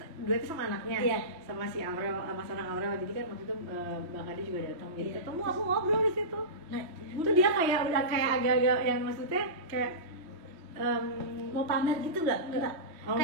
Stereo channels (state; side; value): late; left; 3.0 ms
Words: duetnya sama anaknya, Iya. sama si Aurel, Mas Anang Aurel. Jadi kan waktu itu Mbak Kade juga datang. Jadi Iya. ketemu, aku ngobrol di situ. Nah, Itu dia kayak udah kayak agak-agak yang maksudnya kayak mau pamer gitu nggak? Enggak. Oh,